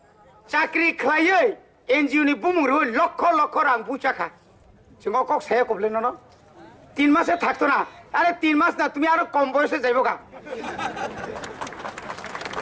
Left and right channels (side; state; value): both; identical; correlation 1.00